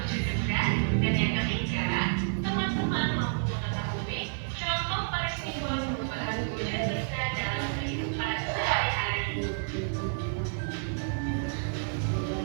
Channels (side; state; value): left; silent; digital silence